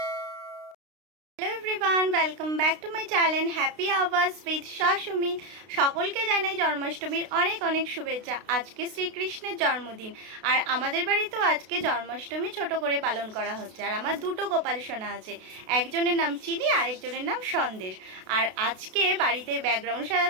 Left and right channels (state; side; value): late; left; 32 ms